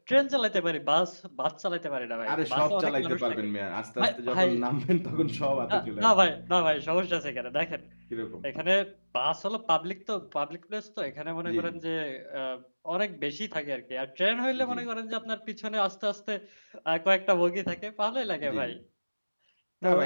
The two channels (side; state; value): both; inverted; correlation -1.00